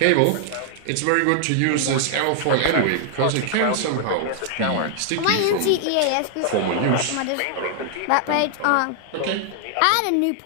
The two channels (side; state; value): both; different; correlation 0.00